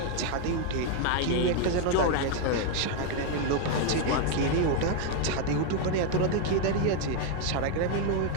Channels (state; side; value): different; both; correlation 0.01